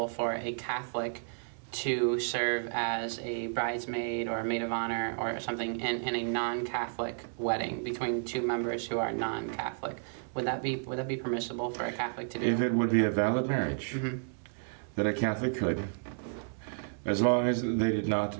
for a Catholic to serve as a bridesmaid or a maid of honor or something in a non-Catholic wedding between two members who are non-Catholic. Would that be permissible for a Catholic to do? If it would be a valid marriage, that a Catholic could, as long as they did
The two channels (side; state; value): left; silent; 56 dB below the other